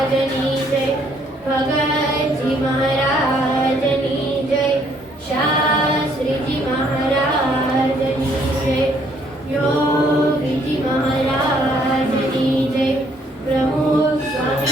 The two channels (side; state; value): both; normal; correlation 0.67